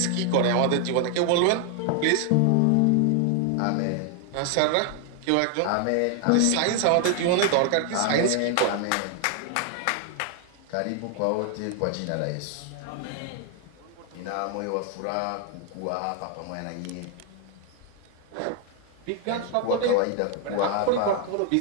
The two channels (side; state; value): both; different; correlation 0.00